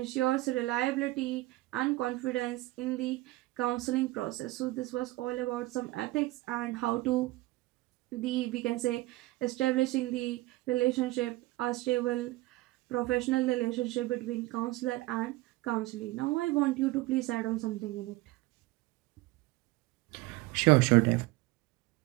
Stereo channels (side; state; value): left; quieter; 19.2 dB